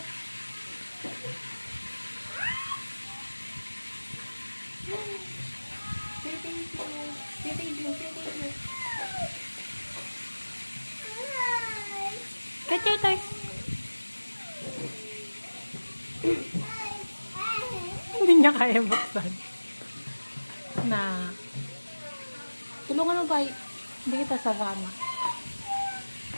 Say thank you. Say thank you. Say thank you. Get your toys. Hindi niya kaya buksan. Na. Tulungan mo ba? Hindi kita sasama.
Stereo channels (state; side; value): inverted; both; correlation -1.00